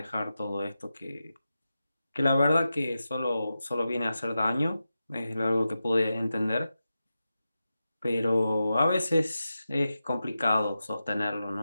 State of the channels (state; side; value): inverted; both; correlation -0.91